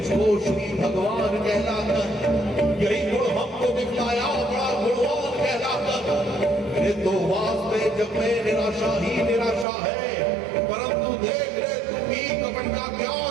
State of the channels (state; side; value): drops out; left; at 9.7 s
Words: श्री भगवान कहलाकर यही गुण हमको दिखलाया बड़ा गुणवान कहलाकर। मेरे तो वास्ते जब मैं निराशा ही निराशा है, परंतु देख रे तू भी कपट का क्या